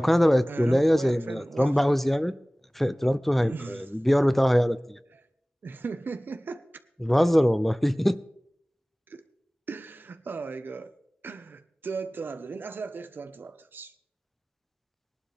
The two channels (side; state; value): both; normal; correlation 0.98